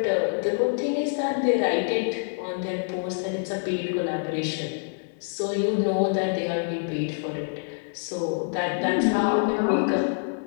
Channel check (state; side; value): silent; right; digital silence